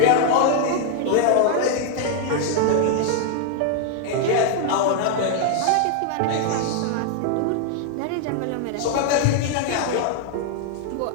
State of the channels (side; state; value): both; different; correlation 0.00